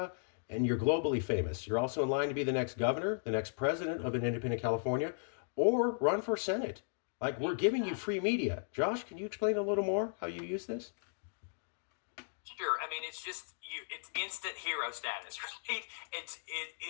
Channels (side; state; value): right; silent; digital silence